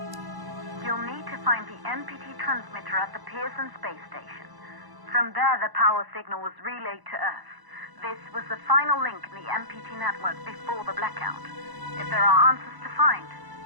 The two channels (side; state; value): left; late; 1.0 ms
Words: You'll need to find the MPT transmitter at the Pearson space station. From there, the power signal was relayed to Earth. This was the final link in the MPT network before the blackout. If there are answers to find,